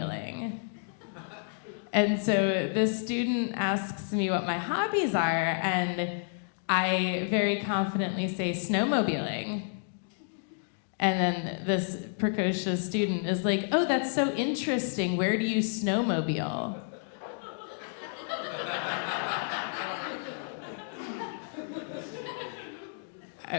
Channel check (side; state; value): right; silent; digital silence